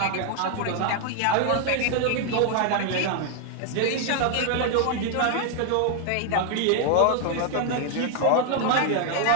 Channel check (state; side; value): different; both; correlation 0.00